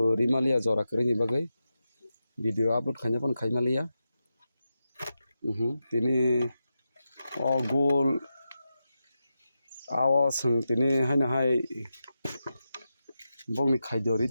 rimalia jora kere ni bagai video upload khanya pon khai malia tini o gol awo sung tini haina hai bongni khai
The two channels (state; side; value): inverted; both; correlation -0.89